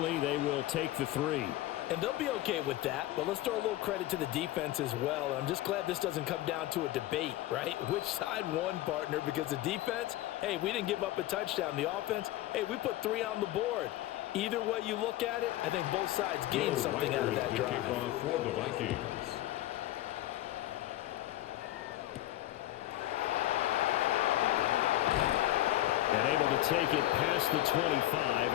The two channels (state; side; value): quieter; right; 15.2 dB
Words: they will take the 3. And they'll be okay with that, but let's throw a little credit to the defense as well. I'm just glad this doesn't come down to a debate, right? Which side won, partner? Because the defense, hey, we didn't give up a touchdown. The offense, hey, we put 3 on the board. Either way you look at it, I think both sides gained something out of that drive. For the Vikings. And able to take it past the 25